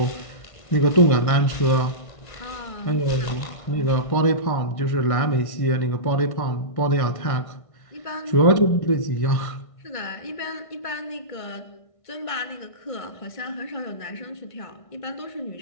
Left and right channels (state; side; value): late; right; 1.5 ms